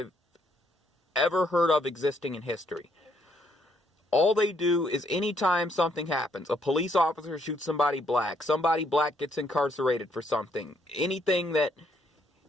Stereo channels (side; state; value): both; normal; correlation 0.71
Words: ever heard of existing in history. All they do is anytime something happens, a police officer shoots somebody black gets incarcerated for something, anything that